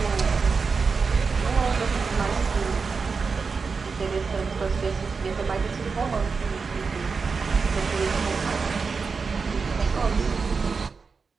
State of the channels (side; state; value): left; quieter; 5.0 dB